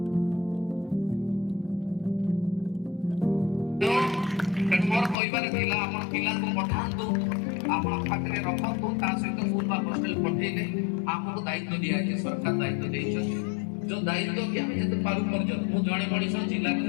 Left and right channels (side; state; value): right; drops out; at 5.2 s